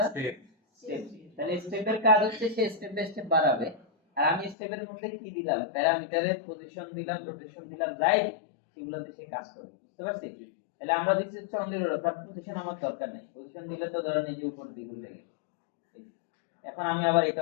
Step. স্টেপ। তাহলে স্টেপের কাজ হচ্ছে সে স্টেপ বাই স্টেপ বাড়াবে, আর আমি স্টেপের মধ্যে কি দিলাম, প্যারামিটারের পজিশন দিলাম, রোটেশন দিলাম, যাই সেগুলোতে সে কাজ করবে। বুঝতে পারছি? তাহলে আমরা দিচ্ছি হচ্ছে অনলি রোটেশন, তার পজিশন আমার দরকার নেই। পজিশন দিলে তো ধরেন এই যে উপর দিকে উঠে গেল। এখন আমি আবার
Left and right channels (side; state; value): right; drops out; at 4.5 s